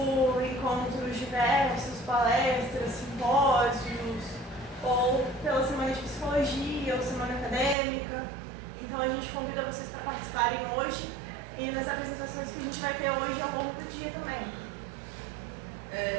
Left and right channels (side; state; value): left; drops out; at 7.8 s